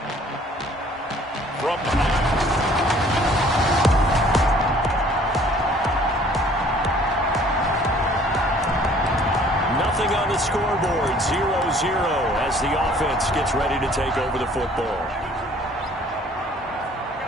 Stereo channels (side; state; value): both; normal; correlation 0.55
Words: From nothing on the scoreboard, 0-0 as the offense gets ready to take over the football.